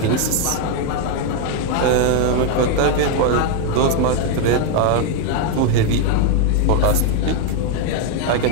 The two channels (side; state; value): both; different; correlation 0.01